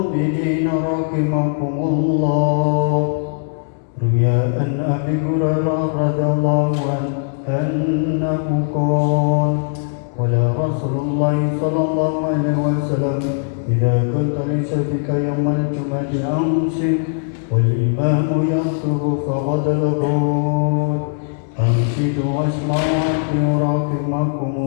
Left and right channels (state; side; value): silent; right; digital silence